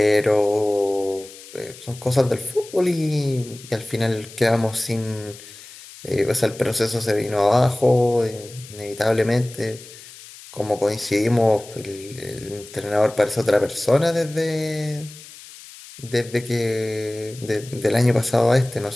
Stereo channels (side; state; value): left; noise; hiss, 18 dB below the sound